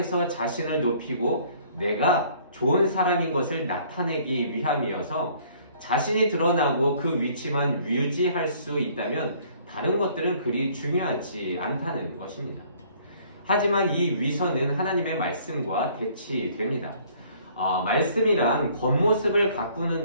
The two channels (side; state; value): both; inverted; correlation -0.58